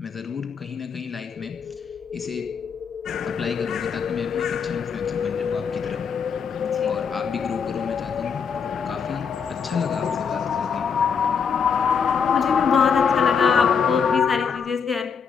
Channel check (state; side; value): quieter; right; 6.4 dB